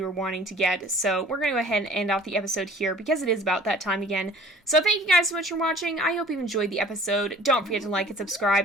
were wanting to get. So we're going to go ahead and end off the episode here because it is about that time again. So thank you guys so much for watching. I hope you enjoyed the episode. Don't forget to like and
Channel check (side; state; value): both; normal; correlation 0.48